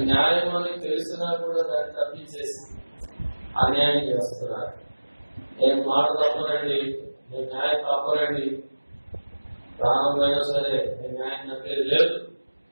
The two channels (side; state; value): both; inverted; correlation -1.00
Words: న్యాయం అని తెలిసినా కూడా దాన్ని తప్పించేసి అన్యాయం చేస్తున్నారు. నేను మాట తప్పనండి, నేను న్యాయం తప్పనండి, ప్రాణమైనా సరే నేను న్యాయం తప్పేది లేదు